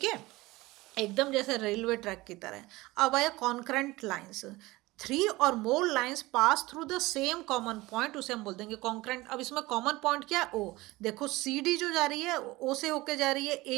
है, एकदम जैसे रेलवे ट्रैक की तरह। अब आया कॉन्करेंट लाइंस, 3 और more lines pass through the same common point, उसे हम बोल देंगे कॉन्करेंट। अब इसमें कॉमन पॉइंट क्या है, ओ। देखो सी डी जो जा रही है ओ से होके जा रही है,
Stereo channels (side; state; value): left; quieter; 20.3 dB